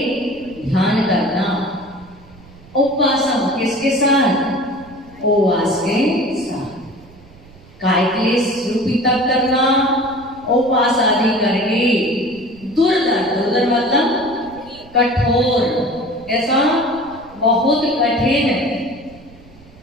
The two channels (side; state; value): right; noise; rumble, 23 dB below the sound